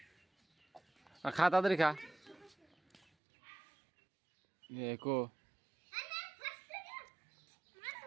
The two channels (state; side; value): drops out; left; at 3.0 s